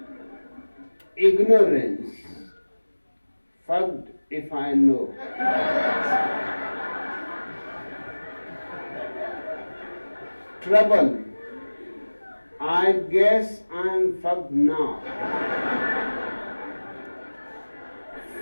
Ignorance, fucked if I know. Trouble, I guess I'm fucked now.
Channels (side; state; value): both; inverted; correlation -1.00